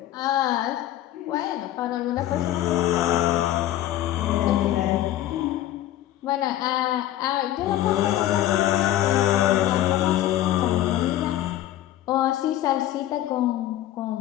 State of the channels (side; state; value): right; quieter; 13.4 dB